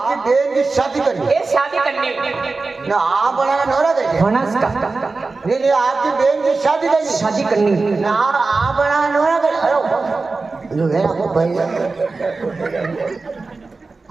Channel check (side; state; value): left; quieter; 3.8 dB